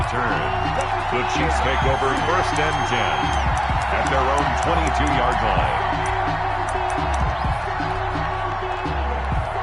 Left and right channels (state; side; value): identical; both; correlation 1.00